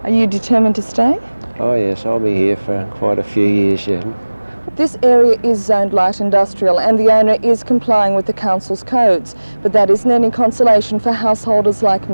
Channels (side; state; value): both; inverted; correlation -1.00